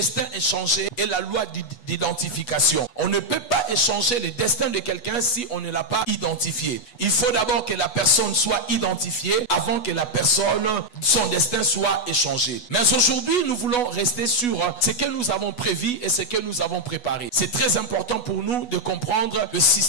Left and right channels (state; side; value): late; right; 8.2 ms